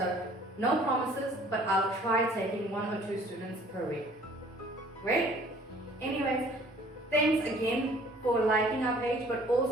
no promises, but I'll try taking 1 or 2 students per week. Great? Anyways, thanks again for liking our page, but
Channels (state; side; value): normal; both; correlation 0.54